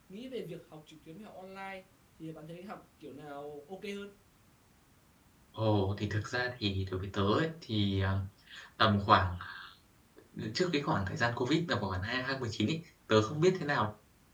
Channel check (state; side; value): identical; both; correlation 1.00